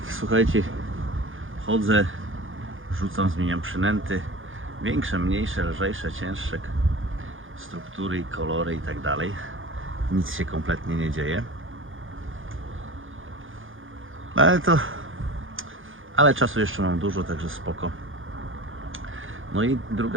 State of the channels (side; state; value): left; late; 0.58 ms